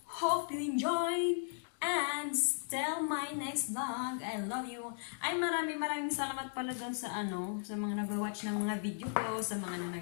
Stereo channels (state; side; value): silent; right; digital silence